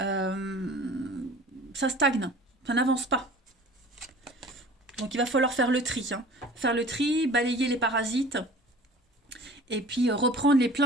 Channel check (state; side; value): normal; both; correlation 0.44